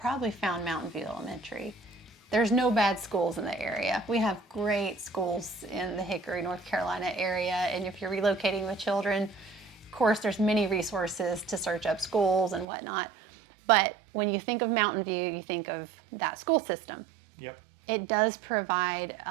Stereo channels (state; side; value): drops out; left; at 12.7 s